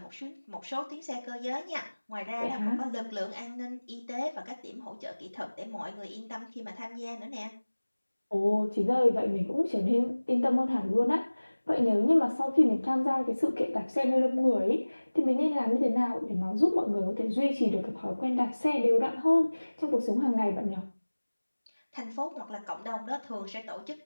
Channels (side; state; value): both; inverted; correlation -1.00